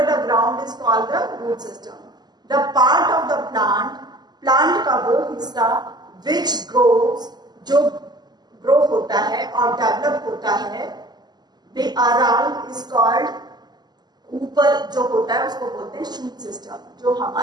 the ground is called the root system. The part of the plant, plant का वो हिस्सा which grows, जो ग्रो होता है और डेवलप होता है, the around is called, ऊपर जो होता है उसको बोलते हैं शूट सिस्टम. जो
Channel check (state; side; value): late; left; 0.20 ms